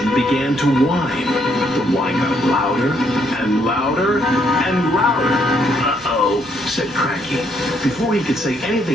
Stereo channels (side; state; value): both; normal; correlation 0.72